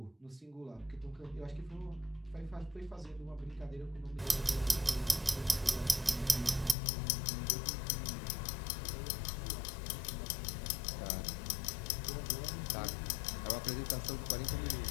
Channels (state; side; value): drops out; right; at 6.8 s